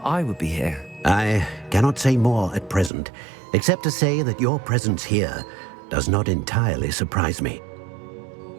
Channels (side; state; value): left; drops out; at 2.9 s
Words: I would be here? I cannot say more at present, except to say that your presence here does not entirely surprise me.